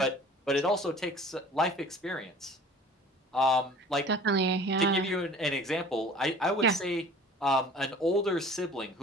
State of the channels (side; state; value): both; normal; correlation 0.46